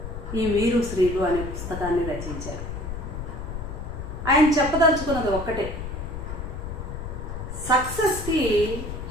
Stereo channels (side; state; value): left; noise; rumble, 7 dB below the sound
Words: ఈ మీరు శ్రీలు అనే పుస్తకాన్ని రచించారు. ఆయన చెప్పదలుచుకున్నది ఒక్కటే, సక్సెస్కి